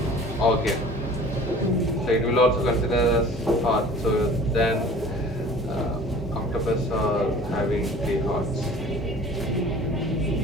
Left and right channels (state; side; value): normal; both; correlation 0.45